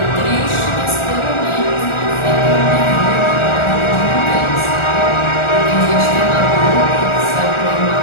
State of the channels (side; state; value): right; late; 1.4 ms